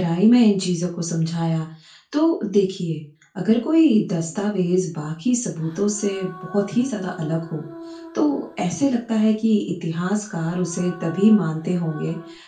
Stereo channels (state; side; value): identical; both; correlation 1.00